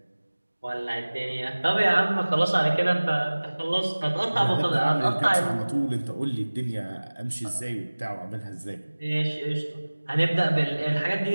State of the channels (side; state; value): both; inverted; correlation -1.00